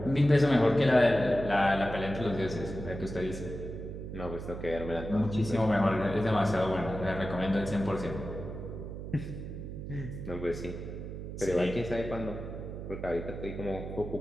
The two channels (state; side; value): noise; right; hum, 8 dB below the sound